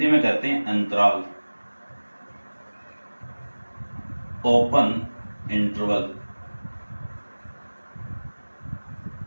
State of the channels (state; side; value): inverted; both; correlation -1.00